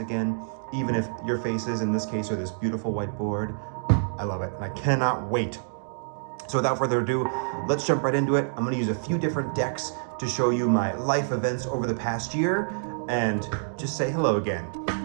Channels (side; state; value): left; silent; digital silence